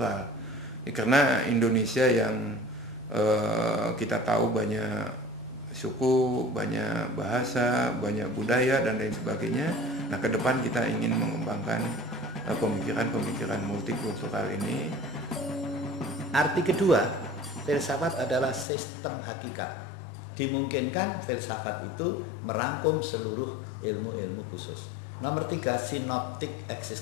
Karena Indonesia yang kita tahu banyak suku, banyak bahasa, banyak budaya dan lain sebagainya. Nah, ke depan kita ingin mengembangkan pemikiran-pemikiran multikultural ini. Arti kedua, filsafat adalah sistem hakikat. Dimungkinkan filsafat itu merangkum seluruh ilmu-ilmu khusus. Nomor 3, sinoptik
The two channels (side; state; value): right; drops out; at 18.7 s